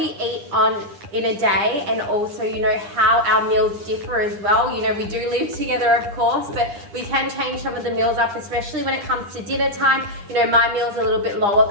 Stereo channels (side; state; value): left; late; 9.8 ms